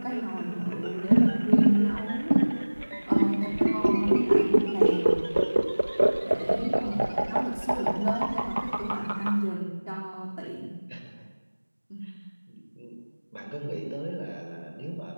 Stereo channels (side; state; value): both; inverted; correlation -1.00